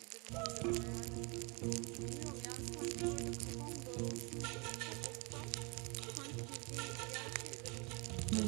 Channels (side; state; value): left; quieter; 30.5 dB